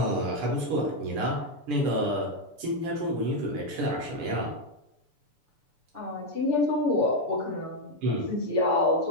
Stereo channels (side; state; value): left; late; 6.9 ms